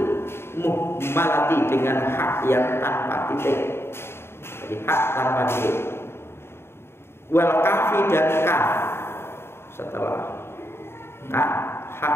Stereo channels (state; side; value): late; right; 0.12 ms